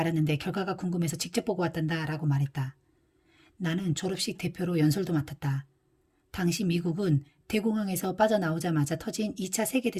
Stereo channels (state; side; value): identical; both; correlation 1.00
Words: 결과가 궁금해서 직접 보고 왔단다 라고 말했다. 나는 졸업식 대표로 연설도 맡았다. 당시 미국은 대공황에서 빠져나오자마자 터진 2차